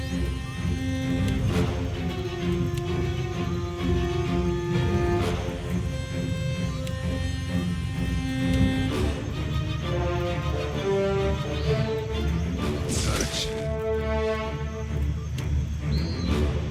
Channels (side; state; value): both; identical; correlation 1.00